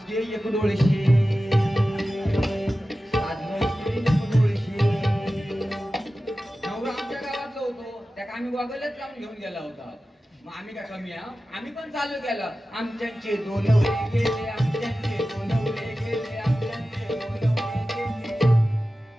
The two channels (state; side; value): normal; both; correlation 0.94